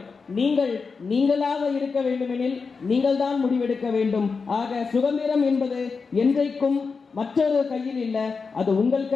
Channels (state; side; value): quieter; right; 4.9 dB